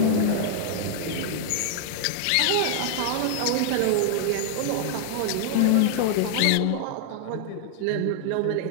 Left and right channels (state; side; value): different; both; correlation -0.01